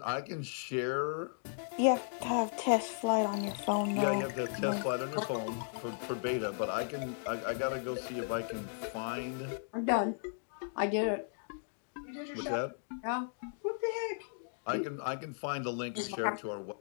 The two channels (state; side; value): silent; right; digital silence